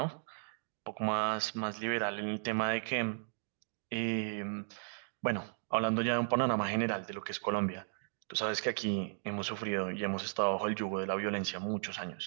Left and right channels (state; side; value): silent; left; digital silence